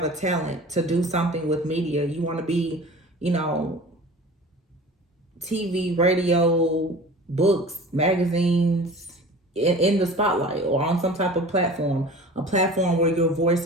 a talent to do something with media. You want to be, you know, TV, radio, books, magazines, in the spotlight or on some type of platform, a platform where your voice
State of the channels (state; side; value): normal; both; correlation 0.40